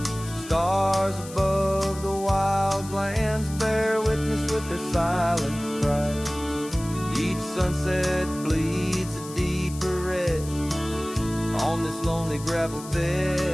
Stars above the wild lands bear witness with their silent cry. Each sunset bleeds a deeper red on this lonely gravel bed,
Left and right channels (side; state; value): left; noise; hiss, 15 dB below the sound